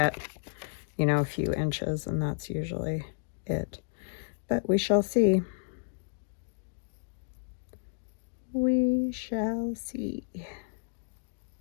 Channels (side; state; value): right; silent; digital silence